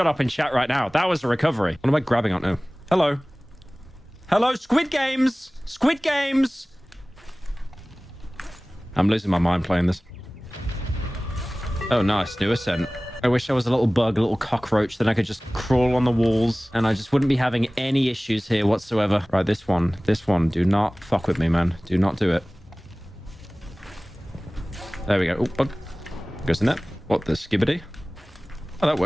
up and chat right now. That was a recovery. What am I grabbing on now? Hello. Hello, Squid Games. Squid Games. I'm losing my mind playing this. Oh, nice. New ascent. I wish I was a little bug, a little cockroach, then I could just crawl on the walls and I just wouldn't be having any issues here whatsoever. Right, this one. Do not fuck with me, man. Do not do it. There we go. Oh, bug. Goes in there. What, the skibbity? Oh, that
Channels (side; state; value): both; normal; correlation 0.98